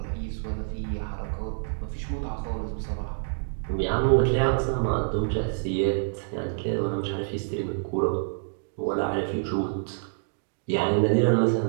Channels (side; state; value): left; silent; digital silence